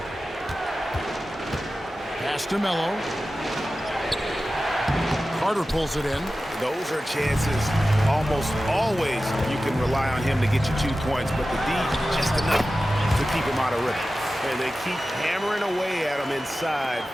Pass to Mello. Carter pulls it in. Those are chances almost always you can rely on him to get you 2 points, but the D just enough to keep him out of rhythm. And they keep hammering away at him inside,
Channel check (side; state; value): both; normal; correlation 0.94